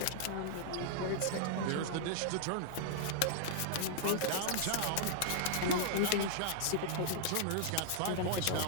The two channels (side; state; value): both; different; correlation -0.01